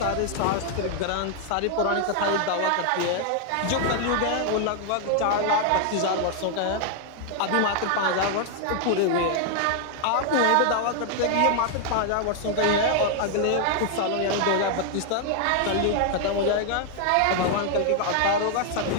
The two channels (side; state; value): both; different; correlation 0.00